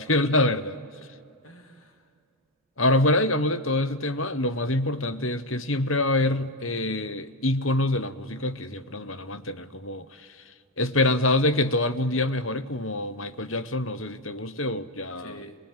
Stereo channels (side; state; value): both; normal; correlation 0.08